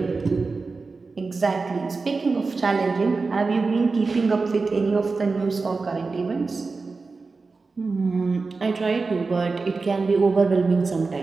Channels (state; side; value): quieter; left; 4.1 dB